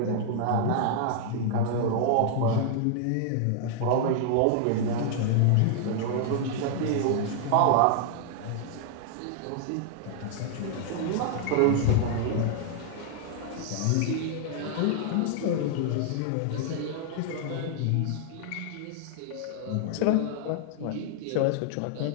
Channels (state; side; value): different; both; correlation -0.01